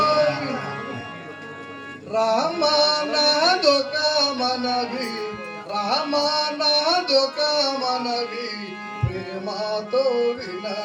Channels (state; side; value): identical; both; correlation 1.00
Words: రామానాదొక మనవి రామానాదొక మనవి ప్రేమతో